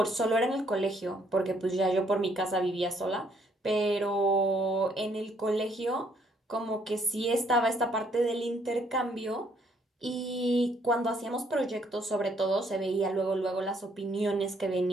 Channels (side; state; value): both; normal; correlation 0.68